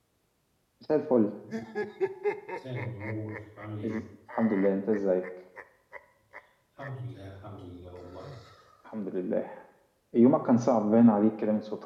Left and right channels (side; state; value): both; identical; correlation 1.00